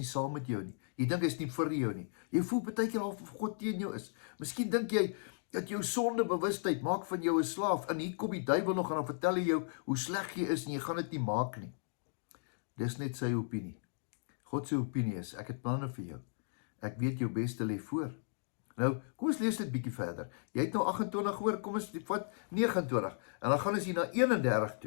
saam met jou nie. Jy dink hy's nie vir jou nie. Jy voel baie keer al of God teen jou is. Miskien dink jy dat jou sondebewustheid maak van jou 'n slaaf, en hier kom die duiwel nog en dan vertel hy jou hoe sleg jy is en jy gaan dit nie maak nie. Dis net sy opinie. God se opinie is, ek het planne vir jou. Ek weet jou beste lê voor. Nou, kom ons lees dit bietjie verder. Jy het nou 28 gehoor, kom ons vat 29. En dan gaan ons hier na 31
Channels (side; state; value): right; silent; digital silence